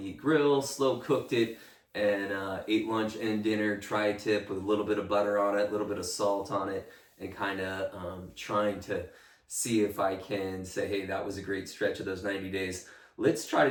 grill, slow cooked it, and ate lunch and dinner tri-tip with a little bit of butter on it, a little bit of salt on it, and kind of trying to see if I can say, hey, that was a great stretch of those 90 days. Let's try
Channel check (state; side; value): identical; both; correlation 1.00